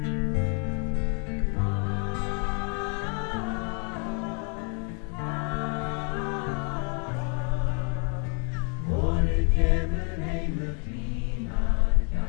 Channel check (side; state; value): right; quieter; 38.3 dB